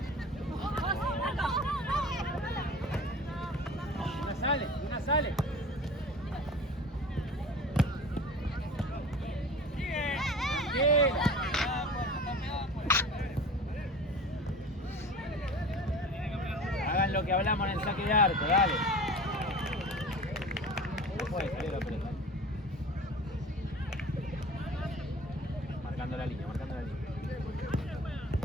Una sale. Hagan lo que hablamos en el saque de arco, dale. No puede salir la pelota. Marcando la línea.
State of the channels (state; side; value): normal; both; correlation 0.39